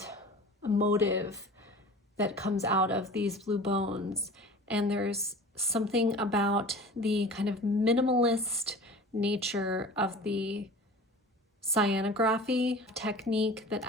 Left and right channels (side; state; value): both; normal; correlation 0.39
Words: emotive that comes out of these blue bones. And there's something about the kind of minimalist nature of the cyanography technique that